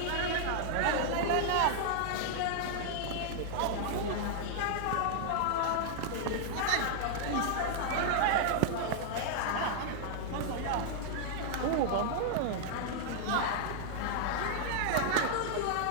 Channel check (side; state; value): both; different; correlation -0.01